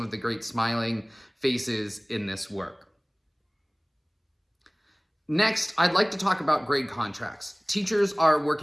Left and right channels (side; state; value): both; identical; correlation 1.00